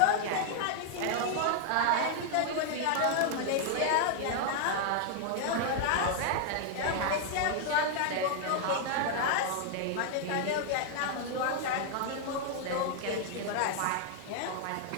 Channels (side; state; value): both; different; correlation 0.00